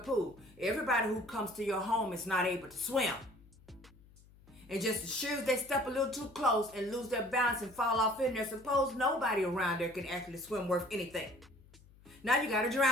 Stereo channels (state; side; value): noise; left; hum, 25 dB below the sound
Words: Everybody who comes to your home is not able to swim. And just as sure as they step a little too close and lose their balance and fall off in there, suppose nobody around there can actually swim worth anything. Now you got a